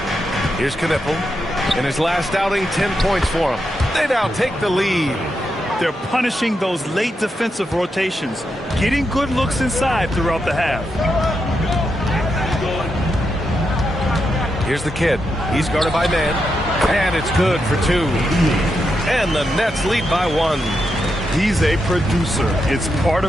Here's Knipple. In his last outing, 10 points for him. They now take the lead. They're punishing those late defensive rotations, getting good looks inside throughout the half. Here's the kid. He's guarded by man. And it's good for 2. And the Nets lead by 1. He's a producer. It's part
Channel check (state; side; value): normal; both; correlation 0.84